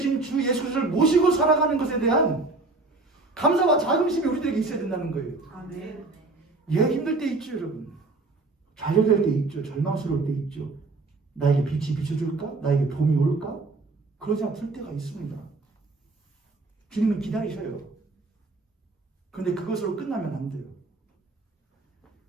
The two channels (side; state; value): left; quieter; 3.4 dB